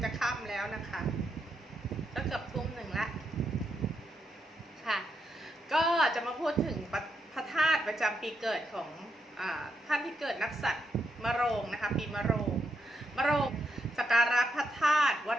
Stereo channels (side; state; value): both; normal; correlation 0.81